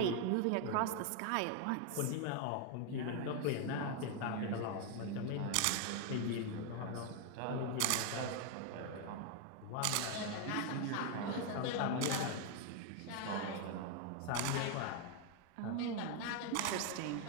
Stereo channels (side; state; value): both; different; correlation 0.01